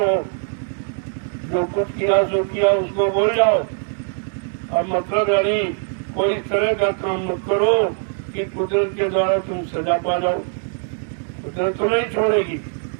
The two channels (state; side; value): silent; left; 60 dB below the other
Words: जो कुछ किया सो किया उसको बोल जाओ। अब मतलब यानी कोई इस तरह का काम मत करो कि कुदरत के द्वारा तुम सजा पा जाओ। कुदरत तो नहीं छोड़ेगी,